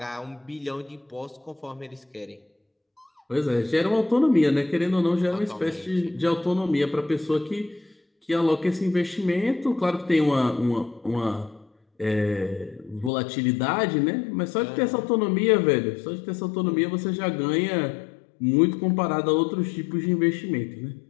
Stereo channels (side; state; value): right; drops out; at 13.1 s